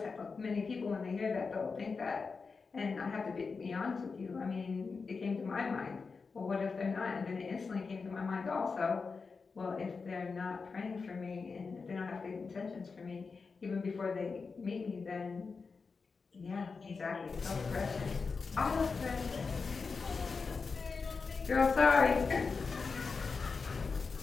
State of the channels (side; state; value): right; quieter; 4.8 dB